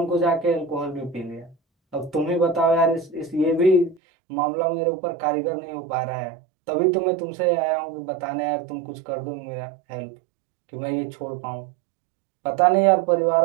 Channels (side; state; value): left; drops out; at 4.0 s